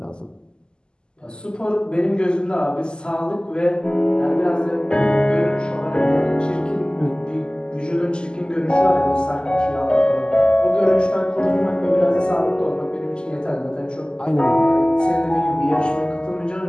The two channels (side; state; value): right; late; 0.047 ms